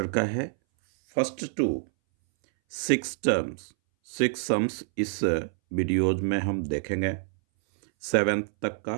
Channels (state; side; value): silent; left; 60 dB below the other